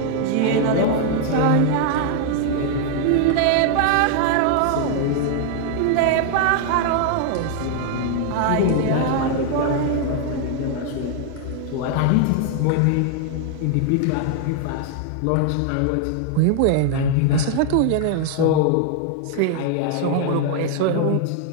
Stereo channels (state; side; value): different; both; correlation 0.00